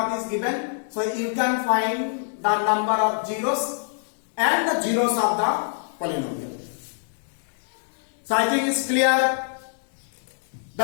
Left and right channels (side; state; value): right; silent; 62 dB below the other